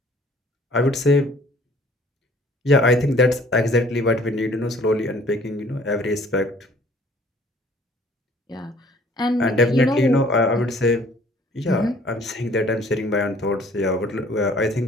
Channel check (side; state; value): both; normal; correlation 0.56